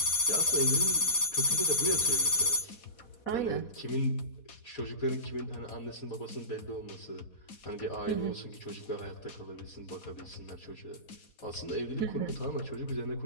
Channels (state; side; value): late; right; 4.2 ms